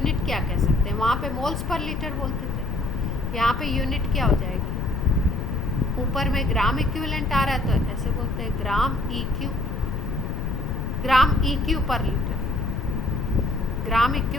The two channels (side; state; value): left; noise; rumble, 3 dB below the sound